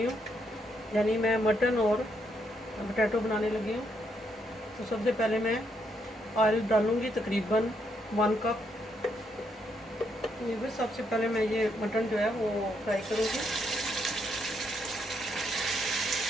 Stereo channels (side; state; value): both; normal; correlation 0.76